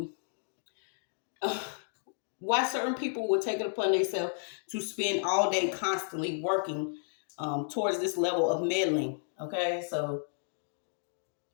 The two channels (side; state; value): right; silent; digital silence